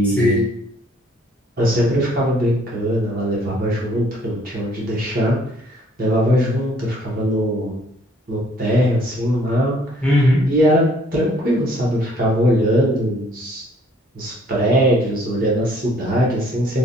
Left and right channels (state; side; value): normal; both; correlation 0.61